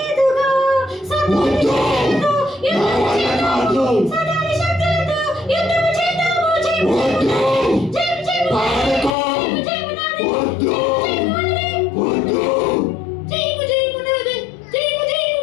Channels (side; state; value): right; drops out; at 9.2 s